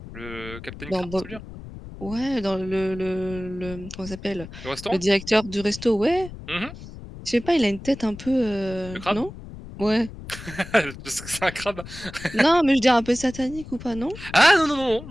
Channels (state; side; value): noise; left; rumble, 14 dB below the sound